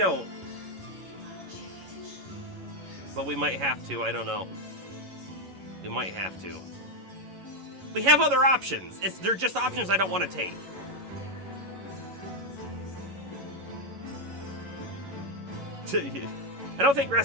But we might have to. I don't know. We might have to. We have other options. They're just options I don't want to take. I don't think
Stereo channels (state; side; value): late; left; 11 ms